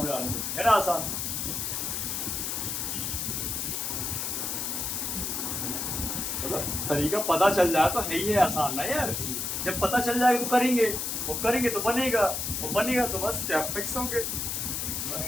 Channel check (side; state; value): left; noise; hiss, 2 dB below the sound